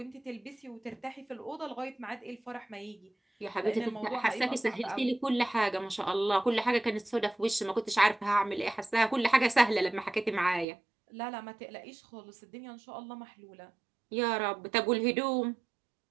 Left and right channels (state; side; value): drops out; left; at 10.7 s